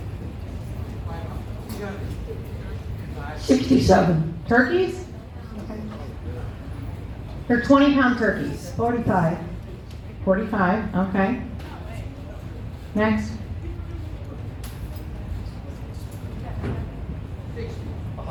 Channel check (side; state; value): both; identical; correlation 1.00